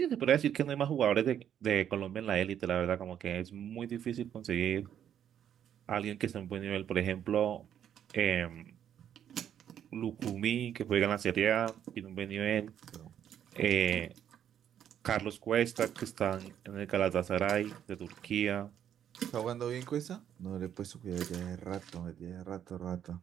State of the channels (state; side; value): quieter; left; 9.6 dB